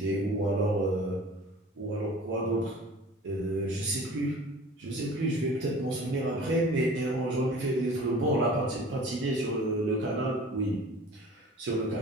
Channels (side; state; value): both; normal; correlation 0.44